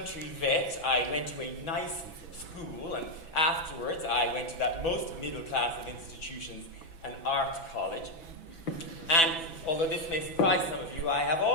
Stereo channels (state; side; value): late; right; 6.0 ms